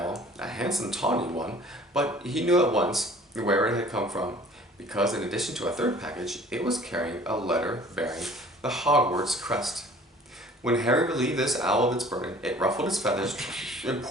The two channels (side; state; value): both; normal; correlation 0.50